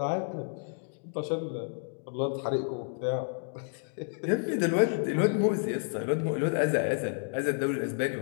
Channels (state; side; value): silent; right; 58 dB below the other